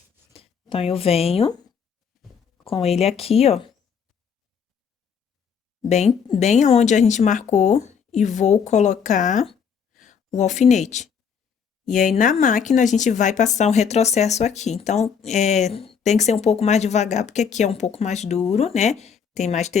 Então, eu venho com ele aqui, ó. Bem onde a gente marcou e vou colocar o alfinete. E aí, na máquina, a gente vai passar um retrocesso aqui. Então, tem que ser um pouco mais devagar, porque aqui é um pouco mais duro, né? Tem mais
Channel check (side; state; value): right; quieter; 6.8 dB